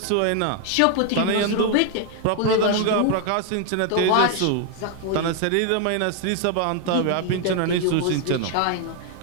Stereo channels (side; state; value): both; different; correlation 0.01